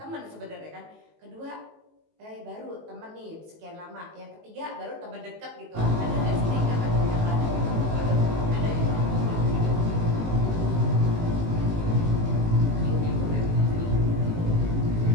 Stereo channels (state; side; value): late; left; 19 ms